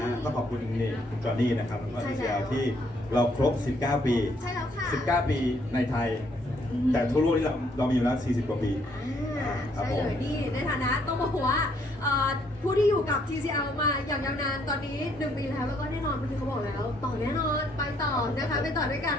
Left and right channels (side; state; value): both; normal; correlation 0.68